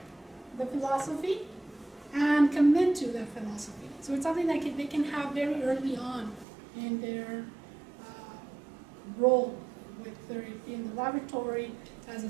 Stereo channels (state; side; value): drops out; left; at 6.5 s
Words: the philosophy and commit to that philosophy. So it's something that they can have very early on in their role, whether it be in the laboratory as a